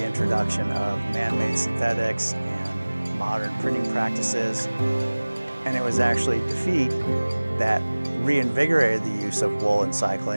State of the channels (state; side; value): inverted; both; correlation -1.00